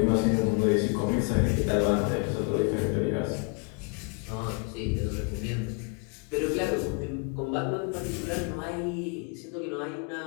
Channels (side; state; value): right; quieter; 33.9 dB